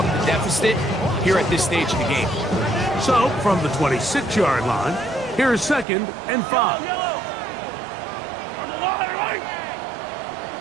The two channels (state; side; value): drops out; left; at 5.9 s